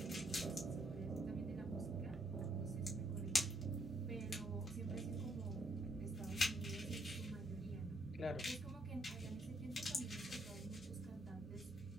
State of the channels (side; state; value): both; normal; correlation 0.72